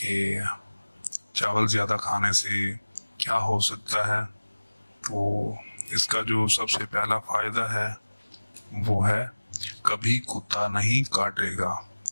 चावल ज़्यादा खाने से क्या हो सकता है। तो इसका जो सबसे पहला फ़ायदा है वो है कभी कुत्ता नहीं काटेगा।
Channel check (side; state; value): both; inverted; correlation -1.00